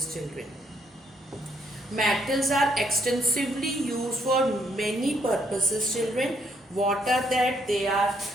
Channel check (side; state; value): both; normal; correlation 0.71